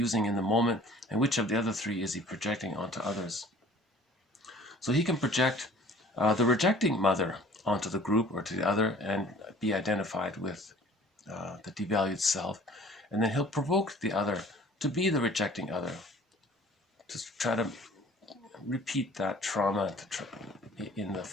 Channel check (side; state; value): both; normal; correlation 0.50